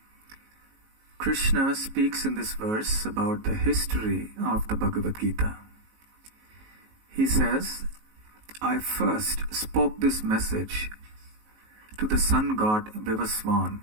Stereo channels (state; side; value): late; left; 19 ms